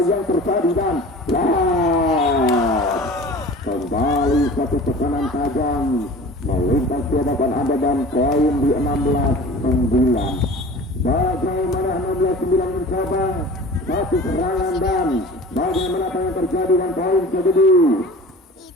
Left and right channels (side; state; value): both; normal; correlation 0.40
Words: yang terjadi dan kembali satu tekanan tajam melintas di hadapan Anda dan poin di 16-9 bagaimana 16-9 mencoba satu serangan dan bagaimana apa yang terjadi dan poin jadi